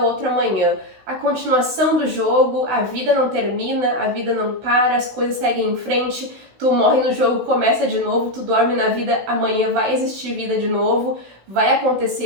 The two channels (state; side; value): late; left; 16 ms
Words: outro amanhã. A continuação do jogo, a vida não termina, a vida não para, as coisas seguem em frente, tu morre no jogo, começa de novo, tu dorme na vida, amanhã vai existir vida de novo, vai